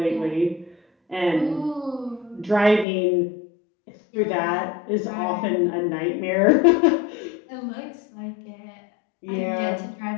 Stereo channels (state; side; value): drops out; right; at 2.9 s